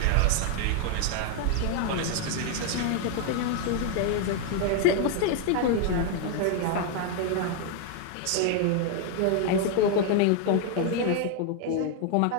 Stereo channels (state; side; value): different; both; correlation 0.00